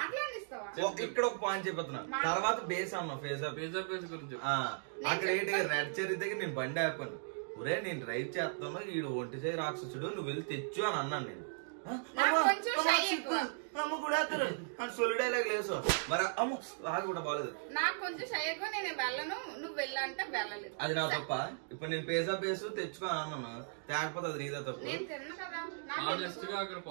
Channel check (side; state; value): left; silent; digital silence